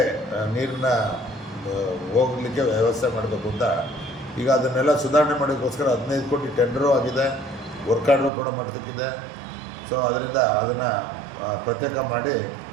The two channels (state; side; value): drops out; left; at 8.3 s